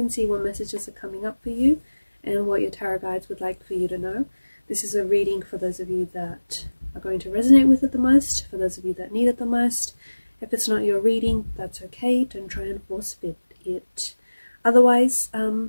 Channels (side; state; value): both; inverted; correlation -1.00